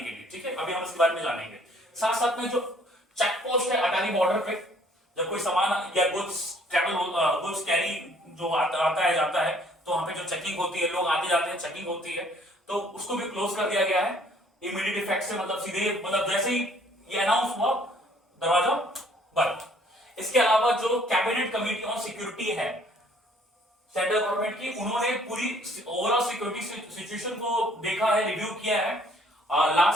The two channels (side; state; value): both; normal; correlation 0.60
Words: लिए, ठीक है। अभी हम इसके बारे में जानेंगे। साथ साथ में जो चेक पोस्ट है अटारी बॉर्डर पे, जब कोई सामान या गुड्स कैरी जो आता है जाता है, तो वहां पे जो चेकिंग होती है, लोग आते जाते हैं, चेकिंग होती है, तो उसको भी क्लोज कर दिया गया है इमीडिएट इफेक्ट से। मतलब सीधे, मतलब जैसे ही ये अनाउंस हुआ दरवाजा बंद। इसके अलावा जो कैबिनेट कमेटी ऑन सिक्योरिटी है सेंट्रल गवर्नमेंट की, उन्होंने पूरी ओवरऑल सिक्योरिटी सिचुएशन को देखा है, रिव्यू किया है।